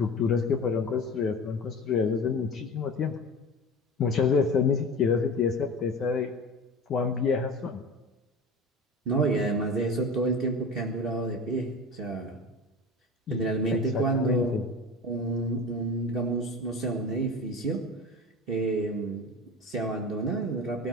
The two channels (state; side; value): normal; both; correlation 0.32